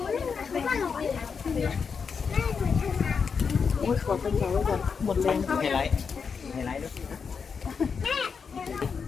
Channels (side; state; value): right; quieter; 5.9 dB